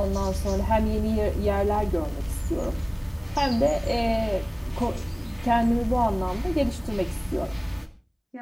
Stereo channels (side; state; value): both; identical; correlation 1.00